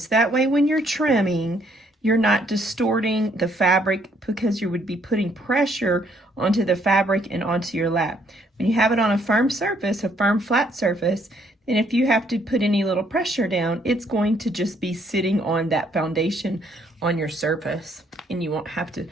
That way when you're trimming, you're not distorting the fabric because you would be putting pressure onto the fabric and onto your lap. When you have it on a firm surface, a firm flat surface, and if you have to put any little pressure down, it's going to just be sitting on that foundation on your surface, and you won't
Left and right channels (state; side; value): normal; both; correlation 0.68